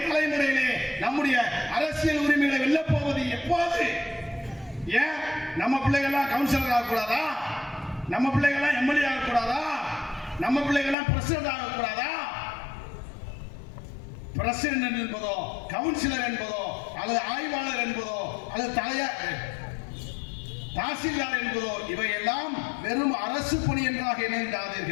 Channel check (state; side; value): drops out; right; at 11.0 s